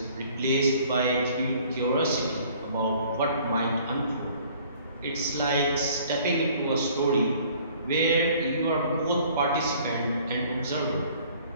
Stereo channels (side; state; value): both; inverted; correlation -0.55